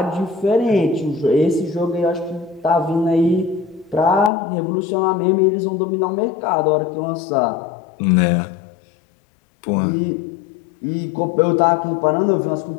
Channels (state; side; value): drops out; right; at 4.3 s